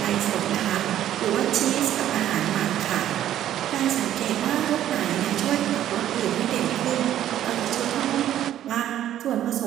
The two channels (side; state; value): left; quieter; 11.8 dB